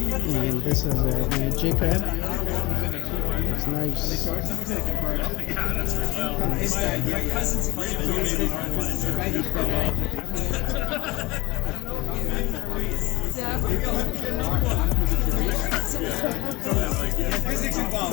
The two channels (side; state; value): right; quieter; 22.1 dB